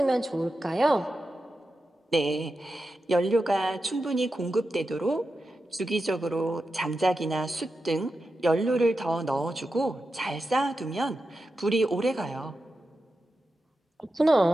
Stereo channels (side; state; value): both; normal; correlation 0.90